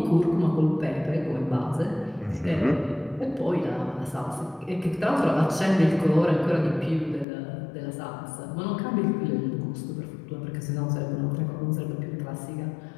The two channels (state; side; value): drops out; right; at 7.2 s